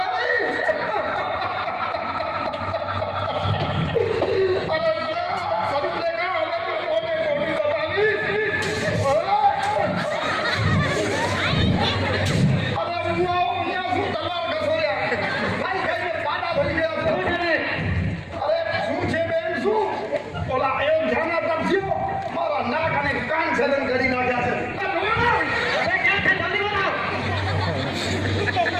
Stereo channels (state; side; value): identical; both; correlation 1.00